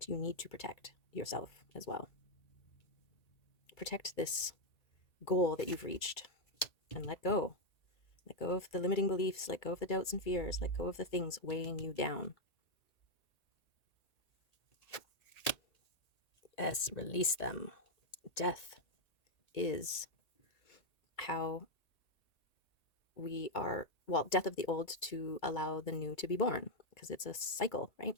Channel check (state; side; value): late; right; 1.8 ms